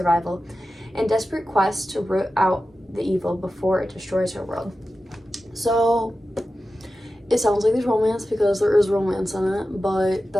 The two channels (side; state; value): both; normal; correlation 0.93